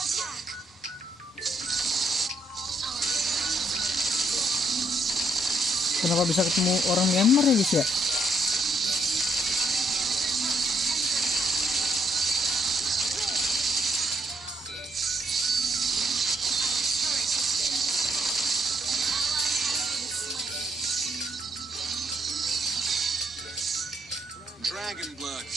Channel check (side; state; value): both; normal; correlation 0.75